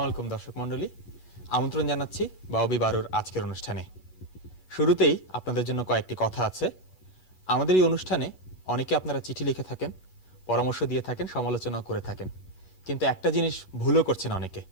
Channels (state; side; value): late; right; 8.3 ms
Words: আলাইকুম দর্শক মণ্ডলী, আমন্ত্রণ জানাচ্ছি বাউবি বারোর আজকের অনুষ্ঠানে। শুরুতেই আপনাদের জন্য কয়েকটি কথা আছে। আমাদের এই অনুষ্ঠানে অনেকে আপনারা চিঠি লিখে থাকেন, পরামর্শ দিয়ে থাকেন, সমালোচনা করে থাকেন, কিন্তু একটা জিনিস ভুলও করছেন অনেকে।